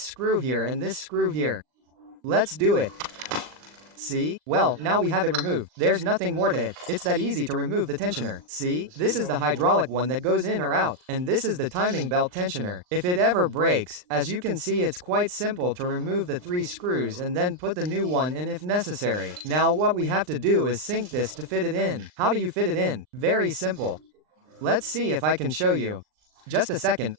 here and this screw here. Let's do it. See? Well, now we have it removed. There's nothing more to it. It's that easy to remove the tensioner. See? This is the hydraulic one that goes in or out. And this is the timing belt tensioner. If it ever breaks, as you can see, it's quite simple to remove the 3 screws and then put the new one in if necessary. Now what we have to do is sink this to fit it in. How do you fit it in? Very simple. Let's see if I can show you. Just a second,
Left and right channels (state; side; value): late; left; 39 ms